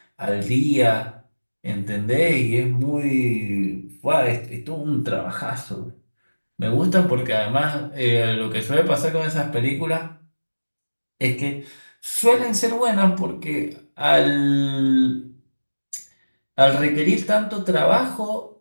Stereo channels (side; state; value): both; inverted; correlation -1.00